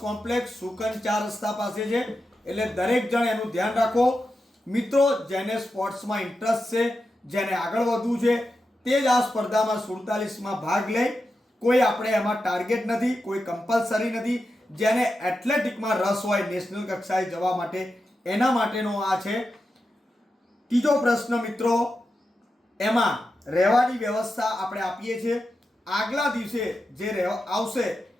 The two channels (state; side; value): normal; both; correlation 0.89